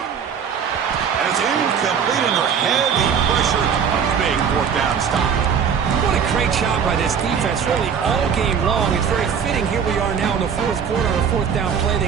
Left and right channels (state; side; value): quieter; left; 7.2 dB